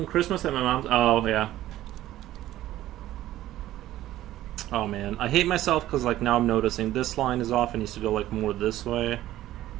Christmas at my mom's. Oh yeah. Oh man, I hate myself because like now I'm noticing this line is off. It needs to go like more this way. It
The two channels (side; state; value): left; quieter; 14.3 dB